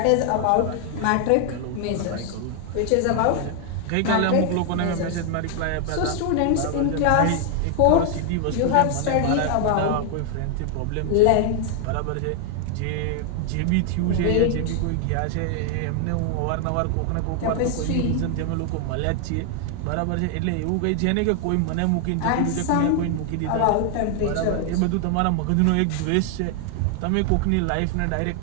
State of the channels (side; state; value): both; different; correlation 0.00